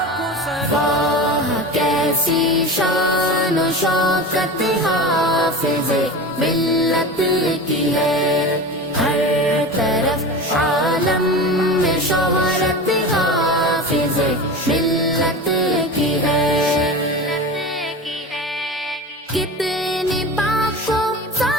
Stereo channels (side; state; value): both; normal; correlation 0.29